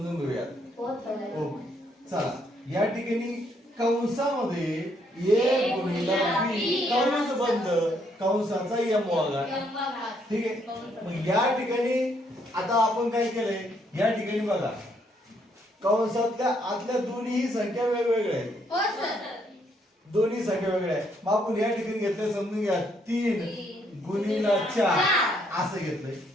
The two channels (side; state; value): both; normal; correlation 0.71